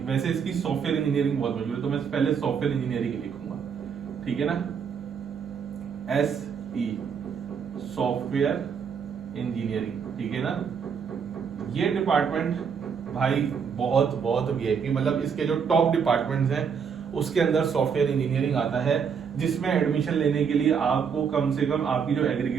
वैसे इसकी सॉफ्टवेयर इंजीनियरिंग बहुत मशहूर है तो मैं पहले सॉफ्टवेयर इंजीनियरिंग लिखूंगा। ठीक है ना, SE सॉफ्टवेयर इंजीनियरिंग। ठीक है ना। ये डिपार्टमेंट भाई बहुत बहुत वीआईपी, मतलब इसके जो टॉप डिपार्टमेंट्स हैं उसके अंदर सॉफ्टवेयर इंजीनियरिंग आता है, जिसमें एडमिशन लेने के लिए आपको कम से कम आपकी जो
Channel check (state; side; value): quieter; left; 6.7 dB